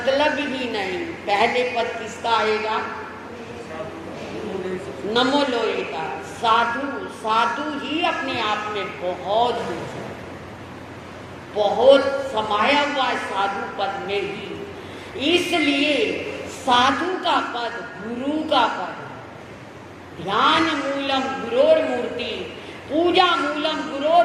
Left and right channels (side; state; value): both; identical; correlation 1.00